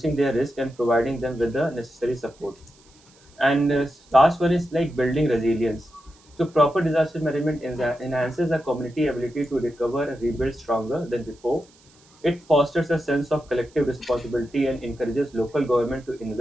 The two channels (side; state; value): right; noise; hiss, 29 dB below the sound